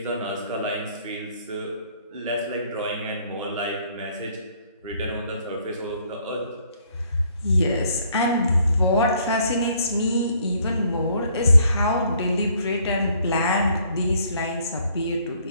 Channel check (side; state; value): both; inverted; correlation -0.64